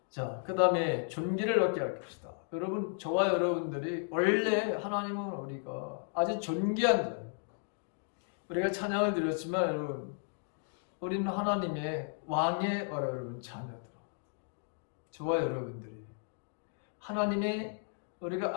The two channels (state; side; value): silent; right; 55 dB below the other